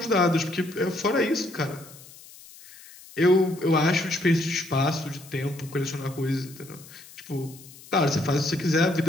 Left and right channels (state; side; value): noise; left; hiss, 20 dB below the sound